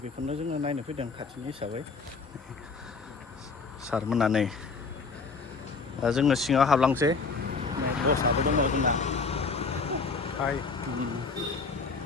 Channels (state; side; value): quieter; right; 4.6 dB